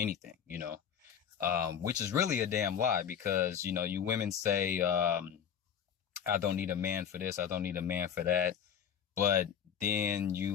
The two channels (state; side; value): quieter; right; 8.3 dB